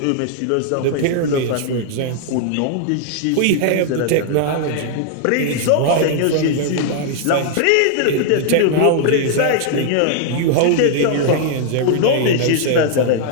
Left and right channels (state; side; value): different; both; correlation -0.01